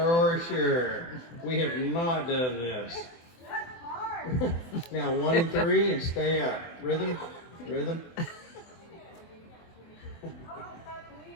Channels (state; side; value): late; right; 24 ms